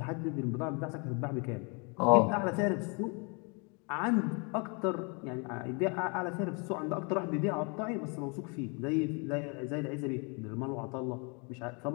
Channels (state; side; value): quieter; right; 33.5 dB